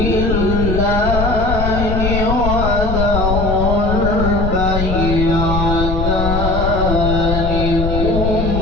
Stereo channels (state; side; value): noise; left; rumble, 2 dB below the sound